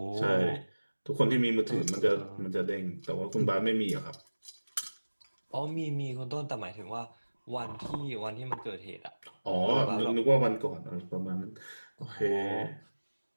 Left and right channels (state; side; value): inverted; both; correlation -1.00